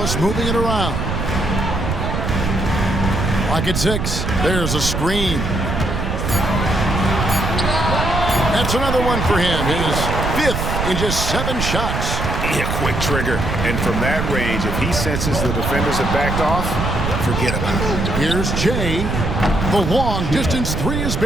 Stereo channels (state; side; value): noise; right; rumble, 2 dB below the sound